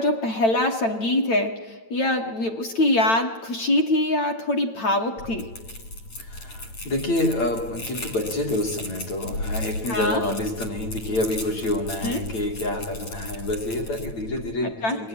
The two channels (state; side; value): late; right; 8.9 ms